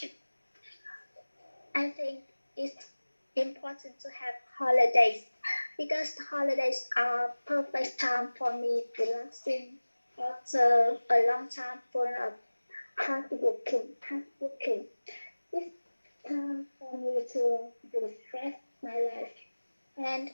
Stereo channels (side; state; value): both; inverted; correlation -1.00